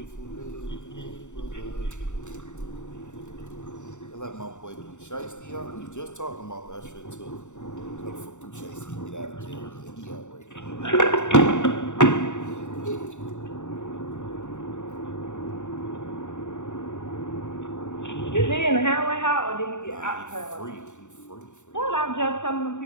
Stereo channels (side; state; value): right; late; 0.84 ms